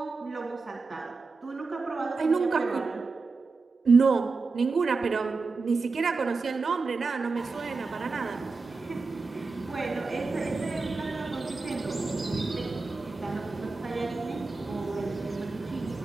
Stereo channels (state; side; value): quieter; left; 4.1 dB